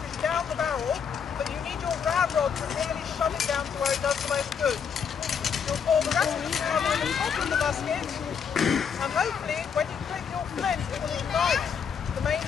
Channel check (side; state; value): right; quieter; 7.0 dB